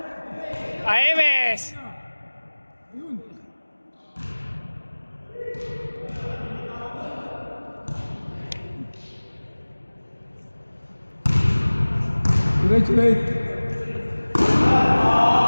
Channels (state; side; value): inverted; both; correlation -1.00